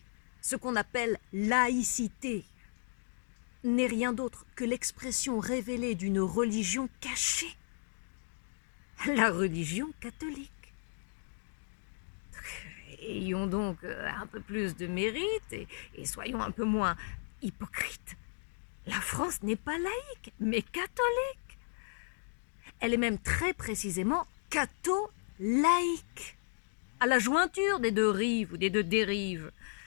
ce qu'on appelle laïcité n'est rien d'autre que l'expression révélée d'une religion cachée, la religion catholique. Ayons donc un peu plus de mérite et soyons un peu moins hypocrites. La France n'est pas laïque, mais catholique. Elle est même très précisément catho-laïque, à la jointure des deux rives ou des deux dérives,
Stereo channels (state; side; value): silent; right; digital silence